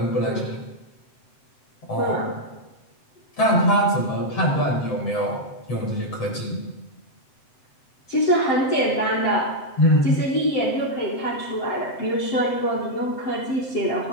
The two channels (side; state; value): right; late; 7.8 ms